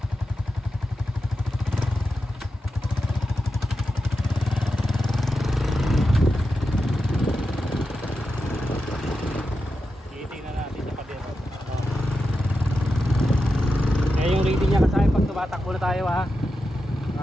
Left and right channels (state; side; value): normal; both; correlation 0.89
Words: Titingnan natin sa pader. Yung rating niya kasi pag tumatakbo na tayo ha.